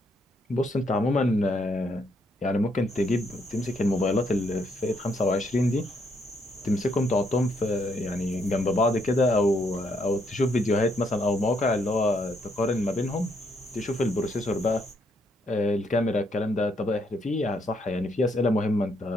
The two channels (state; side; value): normal; both; correlation 0.73